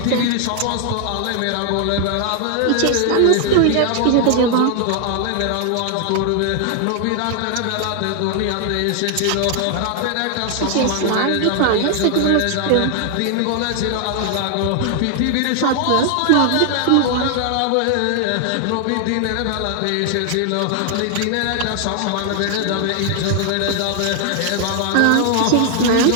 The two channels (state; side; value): different; both; correlation 0.00